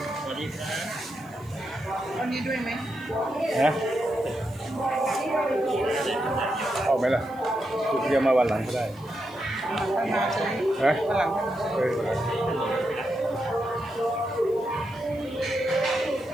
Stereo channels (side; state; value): right; noise; hiss, 27 dB below the sound